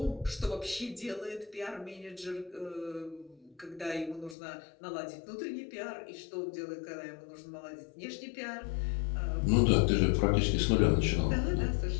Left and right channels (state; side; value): drops out; right; at 4.4 s